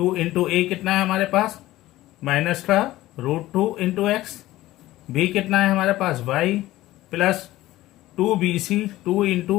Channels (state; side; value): quieter; right; 16.4 dB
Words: इंटू ए कितना है हमारे पास माइनस का √2 इंटू एक्स, v कितना है हमारे पास y plus 2bc, 2 into